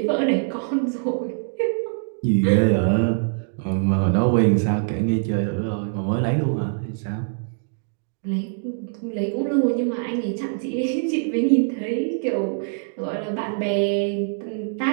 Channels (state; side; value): silent; left; digital silence